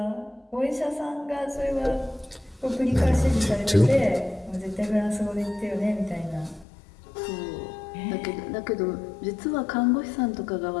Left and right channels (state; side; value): drops out; right; at 6.7 s